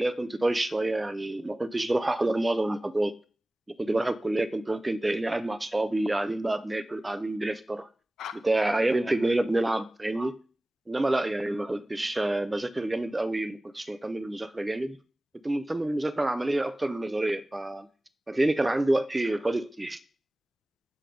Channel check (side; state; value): both; normal; correlation 0.98